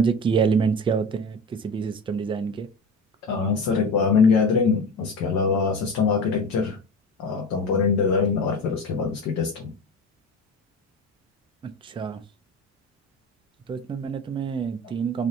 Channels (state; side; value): normal; both; correlation 0.30